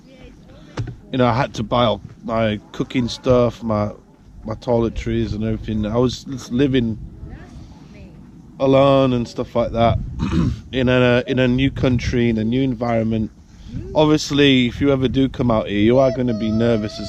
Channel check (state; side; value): identical; both; correlation 1.00